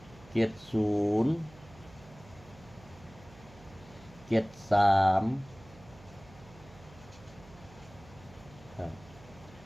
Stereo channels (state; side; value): noise; right; hum, 21 dB below the sound